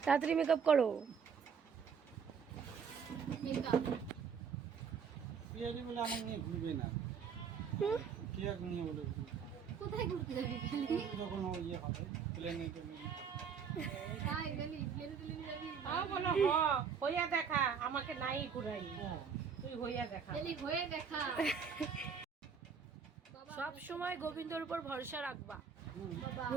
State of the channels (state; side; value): quieter; left; 6.5 dB